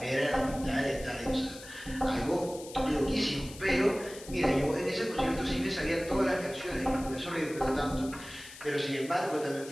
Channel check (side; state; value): left; noise; hiss, 16 dB below the sound